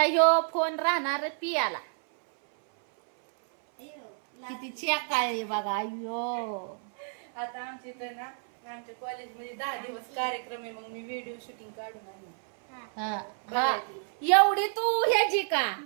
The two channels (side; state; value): left; silent; 58 dB below the other